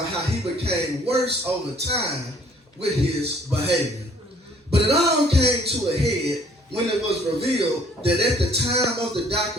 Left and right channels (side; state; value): both; normal; correlation 0.58